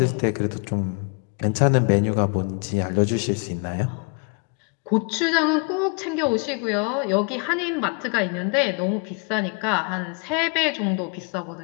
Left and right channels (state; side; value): quieter; right; 35.4 dB